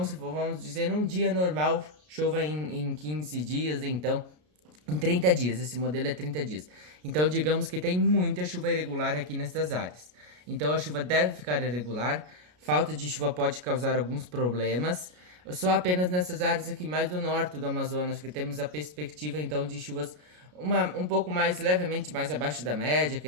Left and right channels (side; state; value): left; late; 33 ms